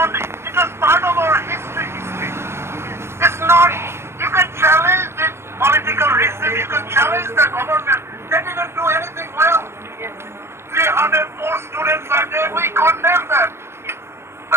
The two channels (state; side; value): late; left; 0.12 ms